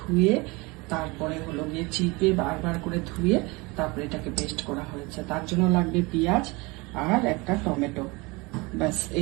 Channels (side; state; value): left; quieter; 25.4 dB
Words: তারপরে হলো গিয়ে চিপে বারবার করে ধুয়ে তারপরে এটাকে পেস্ট করা হয়েছে। তার জন্য লাগবে পেঁয়াজ আর একটা টমেটো, ব্যাস